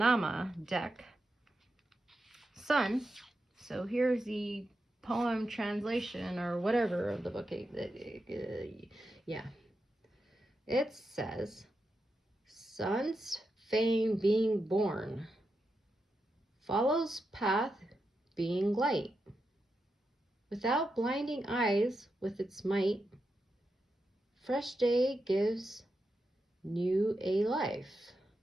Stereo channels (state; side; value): normal; both; correlation 0.87